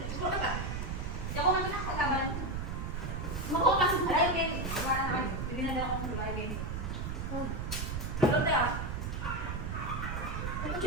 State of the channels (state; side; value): noise; right; rumble, 3 dB below the sound